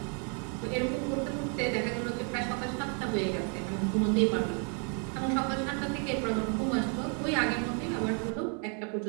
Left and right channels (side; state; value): left; quieter; 39.7 dB